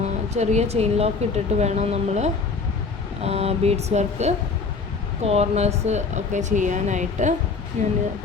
ചെറിയ ചെയിൻ ലോക്ക് ഇട്ടിട്ട് വേണം നമ്മൾ ബീഡ്സ് വർക്ക് കോർണേഴ്സ് ഒക്കെ ചെയ്യാനായിട്ട്. ഞാൻ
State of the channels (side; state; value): right; quieter; 4.6 dB